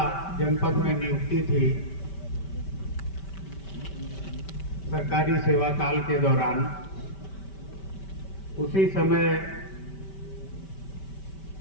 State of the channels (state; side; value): late; right; 5.2 ms